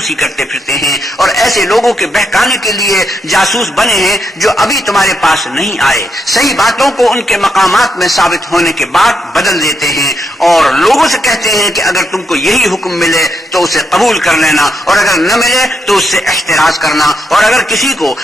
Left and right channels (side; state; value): both; normal; correlation 0.81